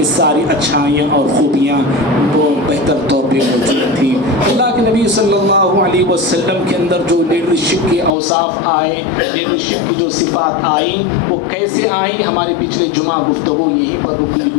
ساری اچھائیاں اور خوبیاں وہ بہتر طور پہ موجود تھیں. اللہ کے نبی صلی اللہ علیہ وسلم کے اندر جو لیڈرشپ کے اوصاف آئے، لیڈرشپ کی جو صفات آئی، وہ کیسے آئیں؟ ہمارے پچھلے جمعہ گفتگو یہیں پر رکی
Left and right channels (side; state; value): right; drops out; at 8.1 s